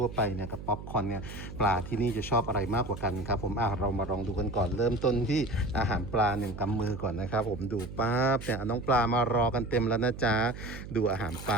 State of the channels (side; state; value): right; noise; hum, 11 dB below the sound